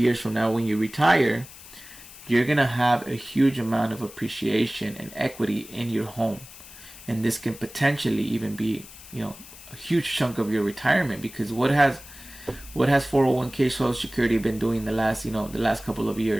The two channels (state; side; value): noise; left; hiss, 17 dB below the sound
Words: from now, when you retire, you're going to have a huge amount of appreciation and equity in your home. And this can potentially even be, a huge chunk of your retirement, because what has 401k Social Security been doing the last couple of